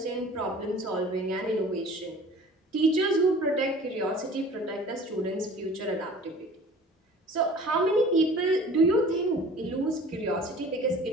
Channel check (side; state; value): both; normal; correlation 0.45